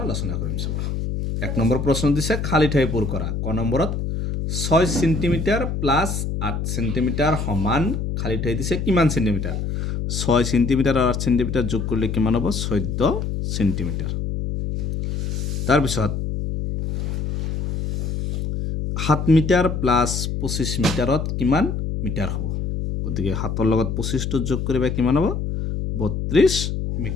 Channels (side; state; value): left; noise; hum, 2 dB below the sound